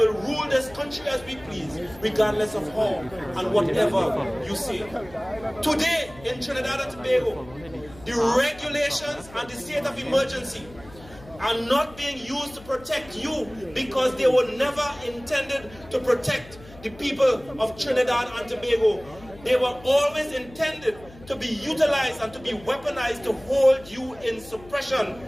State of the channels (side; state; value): left; noise; hum, 21 dB below the sound